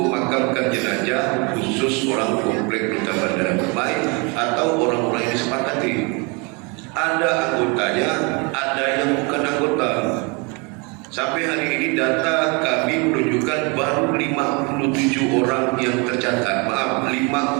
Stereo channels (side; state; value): left; quieter; 30.8 dB